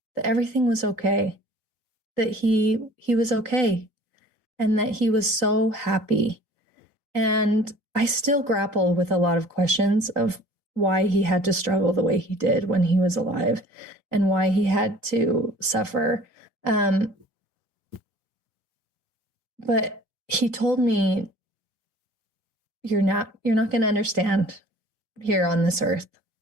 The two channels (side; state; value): left; late; 3.9 ms